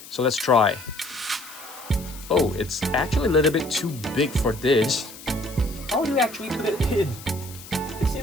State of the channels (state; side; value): noise; left; hiss, 16 dB below the sound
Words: So let's try. Oh, it's actually a little bit too big for this. How do you actually put it in? It